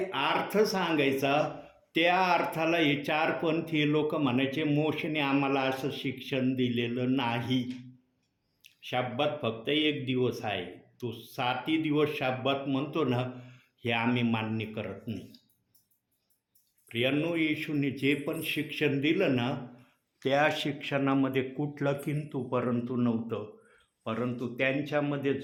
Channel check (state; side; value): identical; both; correlation 1.00